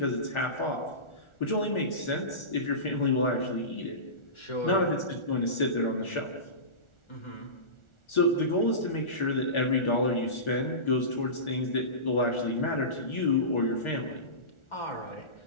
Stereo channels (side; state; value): right; late; 1.4 ms